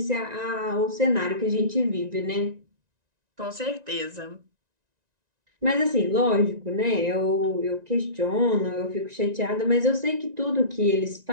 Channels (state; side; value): late; left; 1.9 ms